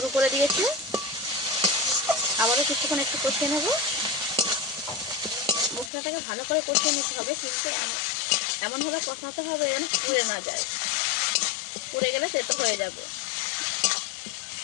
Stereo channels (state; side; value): drops out; right; at 5.9 s